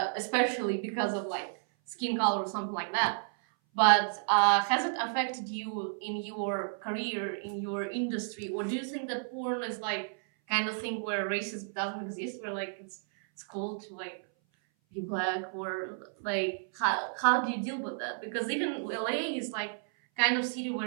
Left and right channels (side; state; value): left; silent; 57 dB below the other